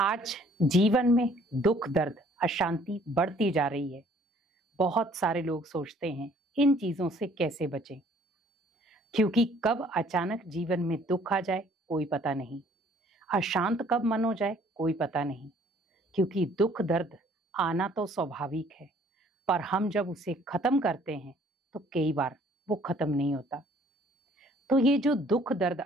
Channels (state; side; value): normal; both; correlation 0.59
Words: जीवन में दुख दर्द अशांति बढ़ती जा रही है। बहुत सारे लोग सोचते हैं इन चीजों से कैसे बचें, क्योंकि कब अचानक जीवन में दुख आ जाए कोई पता नहीं, अशांत कब मन हो जाए कोई पता नहीं। क्योंकि दुख दर्द आना तो स्वाभाविक है, पर हम जब उसे खत्म करते हैं तो कई बार वो खत्म नहीं होता। तो ये जो दुख दर्द